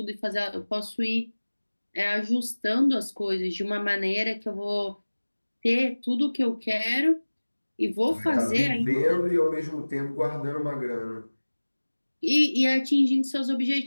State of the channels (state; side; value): inverted; both; correlation -1.00